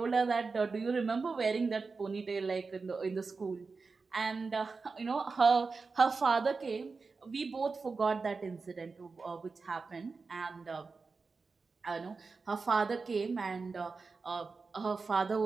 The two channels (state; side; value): quieter; left; 4.4 dB